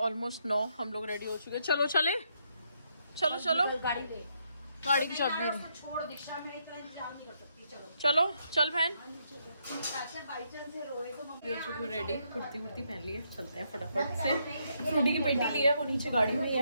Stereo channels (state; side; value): inverted; both; correlation -0.76